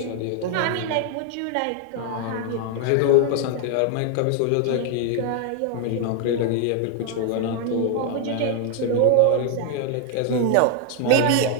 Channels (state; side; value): different; both; correlation 0.00